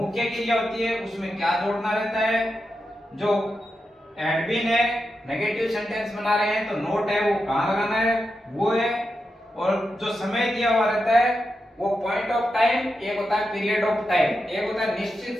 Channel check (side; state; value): both; normal; correlation 0.88